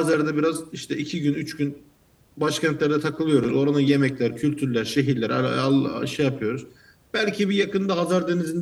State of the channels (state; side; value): identical; both; correlation 1.00